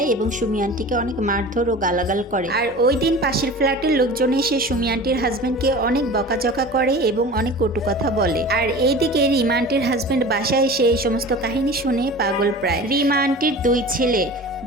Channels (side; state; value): both; normal; correlation 0.37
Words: এবং সুমি আন্টিকে অনেক মারধর ও গালাগাল করে। আর ওই দিন পাশের ফ্ল্যাটের লোকজন এসে সুমি আন্টির হাজবেন্ডকে অনেক বকাঝকা করে এবং অনেক কটু কথা বলে। আর এইদিকে রিমা আন্টির হাজবেন্ড বাসায় এসে এই সমস্ত কাহিনী শুনে পাগল প্রায়। রিমা আন্টির 2 ছেলে,